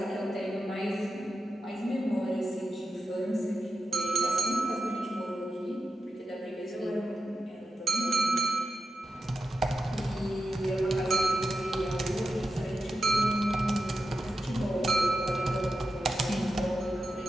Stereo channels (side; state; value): both; normal; correlation 0.90